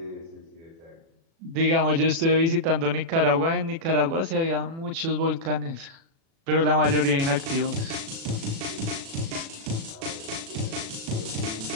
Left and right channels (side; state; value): left; late; 36 ms